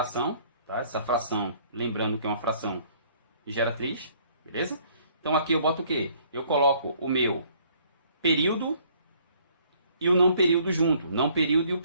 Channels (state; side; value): inverted; both; correlation -0.61